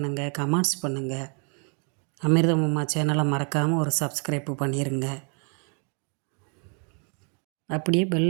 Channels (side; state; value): left; quieter; 37.8 dB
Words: கமெண்ட்ஸ் பண்ணுங்கள். அமிர்தம் அம்மா சேனலை மறக்காமல் ஒரு சப்ஸ்கிரைப் பண்ணிடுங்க. அப்படியே